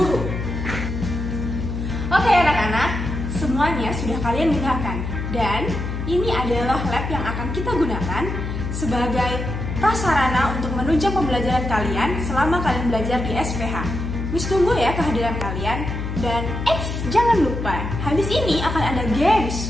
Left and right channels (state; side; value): noise; left; hum, 4 dB below the sound